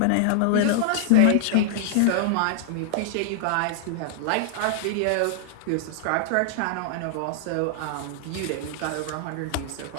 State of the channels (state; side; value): different; both; correlation -0.01